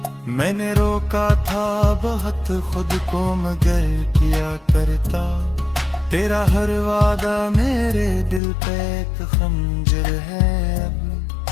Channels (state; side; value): drops out; right; at 8.4 s